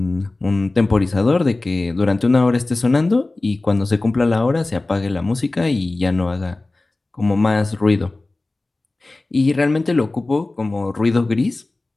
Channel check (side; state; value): right; quieter; 3.1 dB